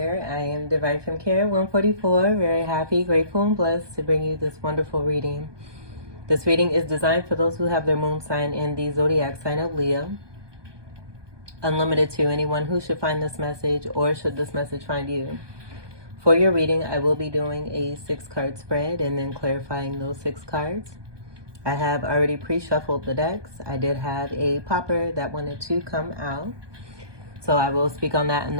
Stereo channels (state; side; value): late; left; 1.2 ms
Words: I am Divine from Care 144, very happy, grateful, and blessed to bring you this wonderful reading. This reading is designed for those who have their moon sign in the zodiac sign of Leo. Unlimited to anyone who should find this message or should this message find you. For your reading, I will be doing a 6-card spread and then clarifying those 6 cards. I have already pre-shuffled the decks. I did have a popper that wanted to come out. So I will speak on that and